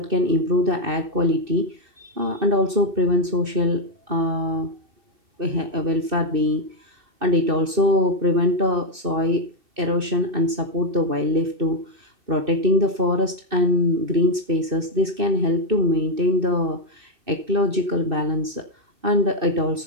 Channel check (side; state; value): left; late; 2.6 ms